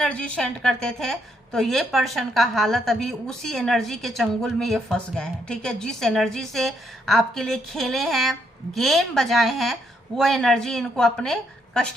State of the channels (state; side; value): normal; both; correlation 0.75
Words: सेंड करते थे। तो ये पर्सन का हालत अभी उसी एनर्जी के चंगुल में ये फंस गए हैं, ठीक है। जिस एनर्जी से आपके लिए खेले हैं, गेम बजाए हैं, वो एनर्जी इनको अपने